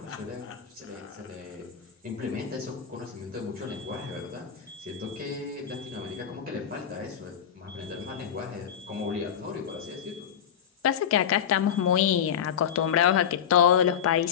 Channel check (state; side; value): quieter; right; 8.5 dB